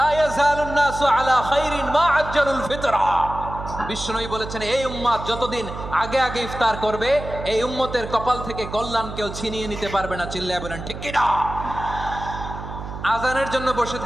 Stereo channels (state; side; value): noise; right; hum, 9 dB below the sound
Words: ইয়াজালুন নাসু আলা খাইরিন মা আজ্জালুল ফিতরা। বিশ্বনবী বলেছেন, এই উম্মত যতদিন আগে আগে ইফতার করবে, এই উম্মতের কপাল থেকে কল্যাণ কেউ ছিনিয়ে নিতে পারবে না। চিল্লায় বলেন ঠিক কিনা? আজানের জন্য বসে